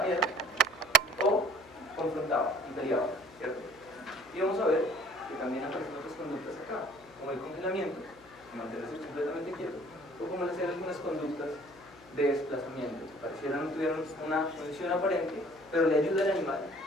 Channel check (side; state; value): left; noise; hum, 25 dB below the sound